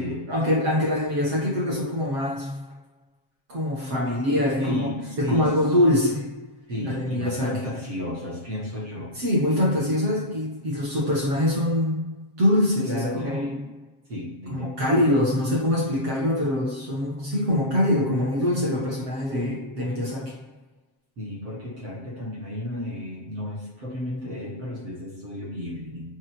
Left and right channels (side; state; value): left; late; 7.5 ms